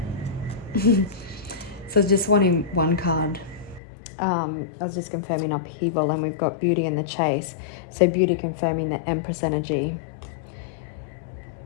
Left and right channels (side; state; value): right; drops out; at 3.8 s